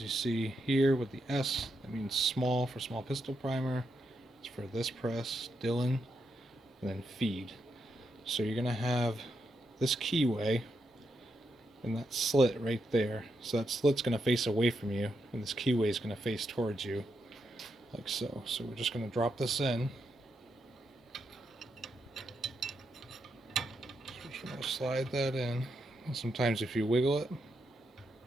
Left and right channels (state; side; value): normal; both; correlation 0.83